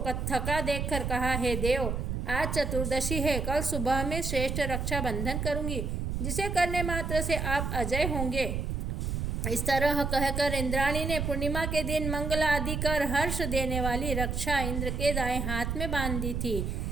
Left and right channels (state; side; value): noise; right; rumble, 2 dB below the sound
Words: थका देखकर कहा, हे देव, आज चतुर्दशी है, कल सुबह में श्रेष्ठ रक्षाबंधन करूंगी, जिसे करने मात्र से आप अजय होंगे। इस तरह कहकर इंद्राणी ने पूर्णिमा के दिन मंगल आदि कर हर्ष देने वाली रक्षा इंद्र के दाएं हाथ में बांध दी थी।